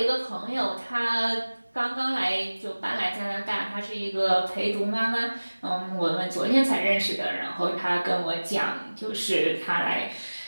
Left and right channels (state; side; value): inverted; both; correlation -1.00